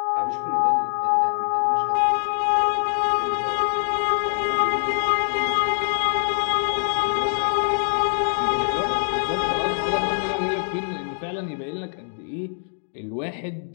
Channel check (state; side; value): silent; right; digital silence